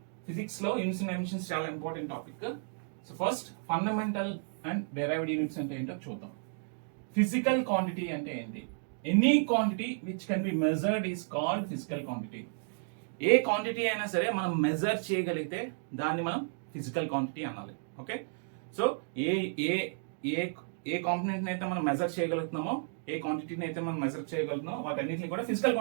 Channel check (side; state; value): left; silent; digital silence